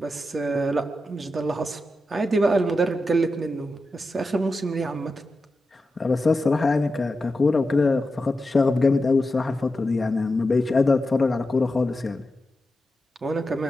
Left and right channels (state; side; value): normal; both; correlation 0.90